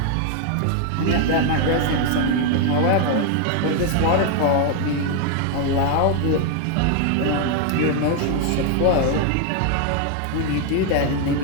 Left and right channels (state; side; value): different; both; correlation 0.01